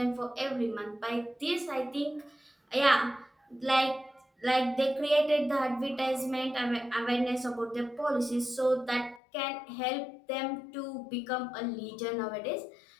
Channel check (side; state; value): right; drops out; at 9.2 s